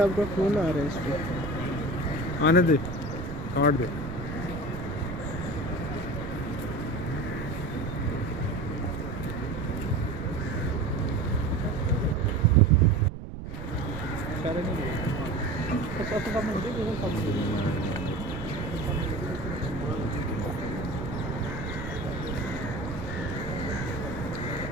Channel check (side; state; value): right; noise; rumble, 8 dB below the sound